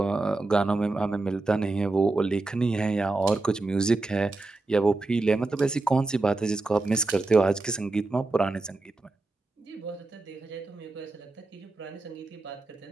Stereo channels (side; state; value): left; quieter; 3.2 dB